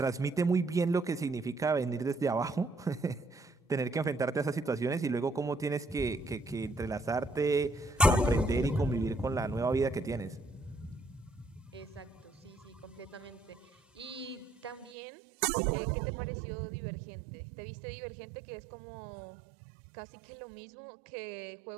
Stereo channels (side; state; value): left; drops out; at 14.9 s